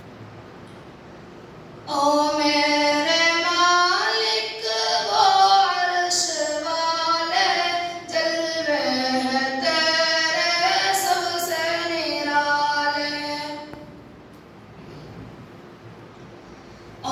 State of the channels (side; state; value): both; identical; correlation 1.00